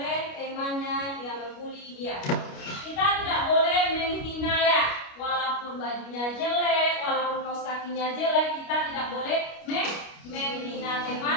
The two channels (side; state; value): right; late; 29 ms